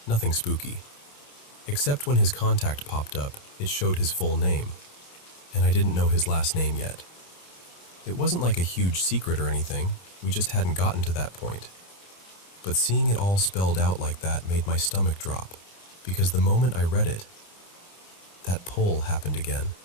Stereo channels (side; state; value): right; late; 28 ms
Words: nothing spooky. Except when his contact popped up, it showed his full name. and I didn't know his last name yet. It wasn't like a huge secret or anything, we just hadn't gotten to that point. But seeing it all spelled out like that made my stomach drop, because the moment I read it, that pull happened again.